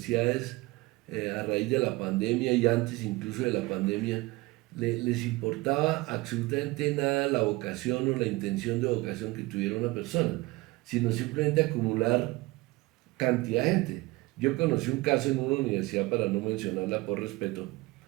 a raíz de la pandemia y antes incluso de la pandemia, les importaba absolutamente nada la vocación o la intención de vocación que tuviera una persona, sino simplemente acumular cantidad de gente. Yo conocí un caso en una universidad, para no mencionarla por respeto,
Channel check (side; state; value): left; quieter; 21.7 dB